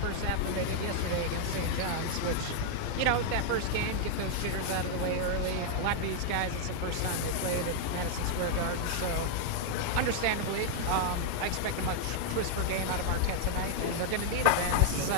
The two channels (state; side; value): different; both; correlation -0.01